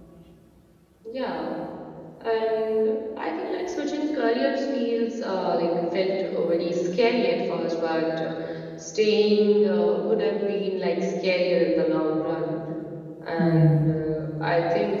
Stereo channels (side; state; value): both; identical; correlation 1.00